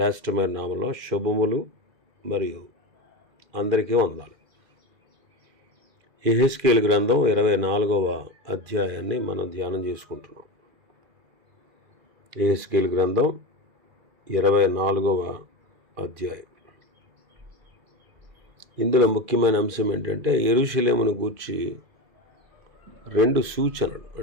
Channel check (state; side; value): late; left; 2.4 ms